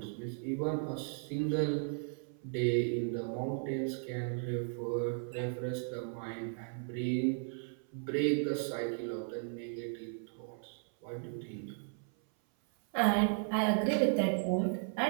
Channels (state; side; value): silent; left; 54 dB below the other